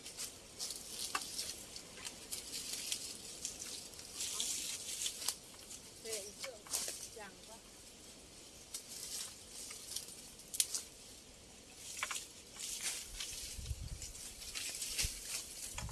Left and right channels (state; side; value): identical; both; correlation 1.00